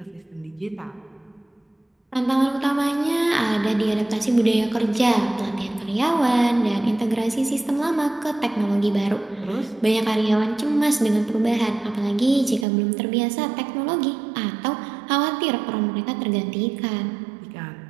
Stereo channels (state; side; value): drops out; left; at 12.7 s